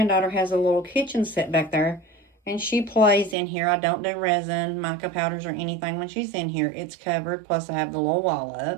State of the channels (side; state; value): left; drops out; at 3.4 s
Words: has a little kitchen set back there, and she plays in here. I don't do resin, mica powders, or anything when she's in here. It's covered, plus I have the little wall